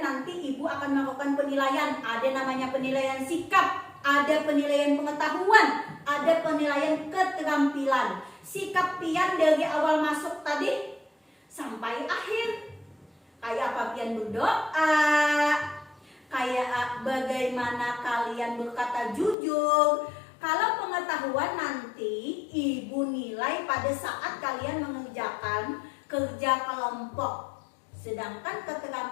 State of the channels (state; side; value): drops out; right; at 19.4 s